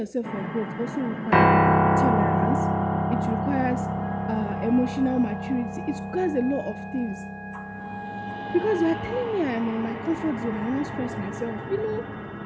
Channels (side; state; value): both; identical; correlation 1.00